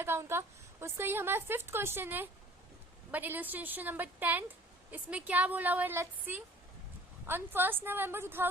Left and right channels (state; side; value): normal; both; correlation 0.50